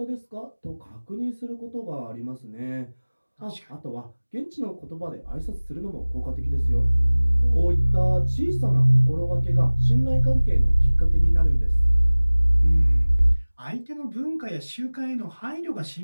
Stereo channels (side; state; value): both; inverted; correlation -1.00